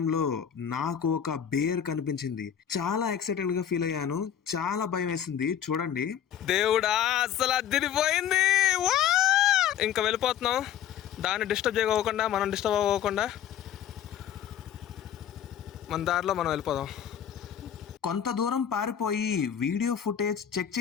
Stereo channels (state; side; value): quieter; right; 9.6 dB